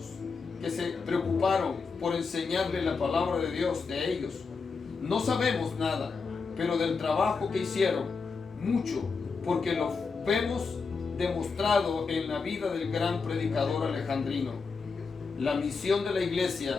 que se preocuparon por enseñarle la palabra de Dios de ellos. No sabemos nada, pero del trabajo que hicieron, mucho, porque lo vemos demostrado en la vida del gran predicador alejandrino. La misión de la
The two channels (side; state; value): right; quieter; 4.9 dB